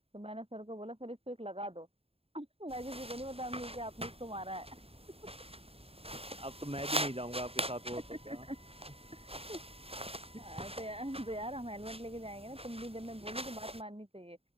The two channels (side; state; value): left; late; 0.28 ms